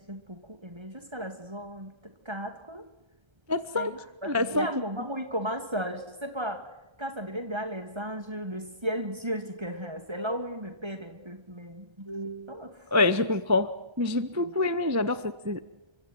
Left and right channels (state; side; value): late; left; 1.3 ms